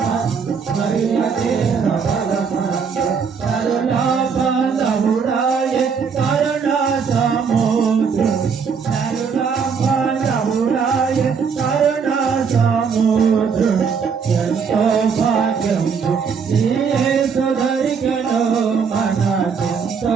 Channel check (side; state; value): left; quieter; 6.0 dB